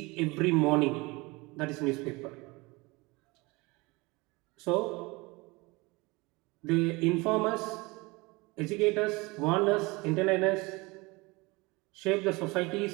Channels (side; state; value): left; quieter; 24.6 dB